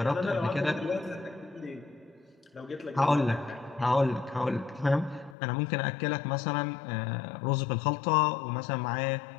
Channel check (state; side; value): drops out; right; at 5.4 s